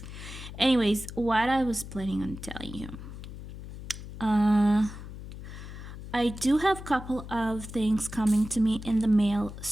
Anyways, what I was planning on telling you, I do have a couple of things coming to me in the mail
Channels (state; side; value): noise; left; hum, 12 dB below the sound